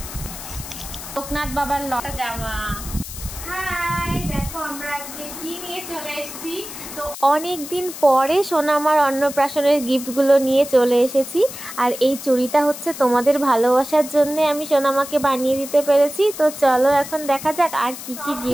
লোকনাথ বাবার লতা জামা। হাই, দেখো আমরা আজকে কি নিয়ে চলে এসেছি। তো অনেক দিন পরে সোনামার অন্নপ্রাশনের গিফটগুলো নিয়ে চলে এসেছি। আর এই চুড়িটা হচ্ছে তোমাদের ভালোবাসার জন্য আমি সোনামাকে বানিয়ে দিতে পেরেছি। তো চলো এখন দেখা যাক আর কি কি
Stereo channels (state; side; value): noise; left; hiss, 11 dB below the sound